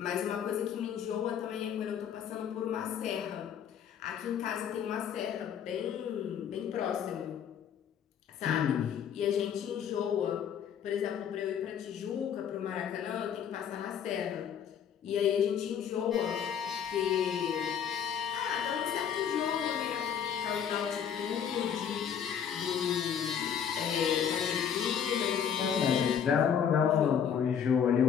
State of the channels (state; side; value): quieter; right; 8.2 dB